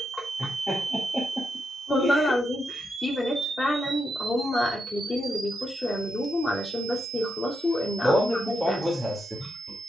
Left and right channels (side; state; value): both; normal; correlation 0.83